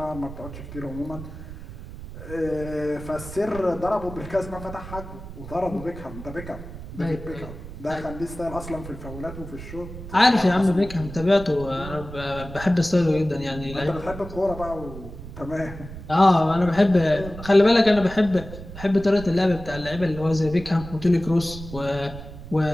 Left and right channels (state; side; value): noise; right; rumble, 12 dB below the sound